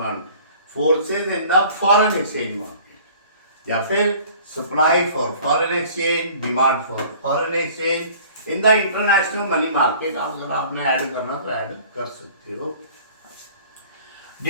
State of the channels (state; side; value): inverted; both; correlation -0.49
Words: Forces in the foreign exchange market. या फिर supply for foreign exchange, demand for foreign exchange. In the international money market, अगर आपने add करना तो add कर सकते हो.